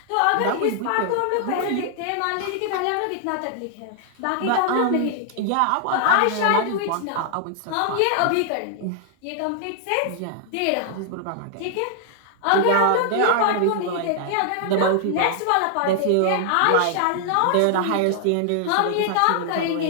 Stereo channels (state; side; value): different; both; correlation 0.00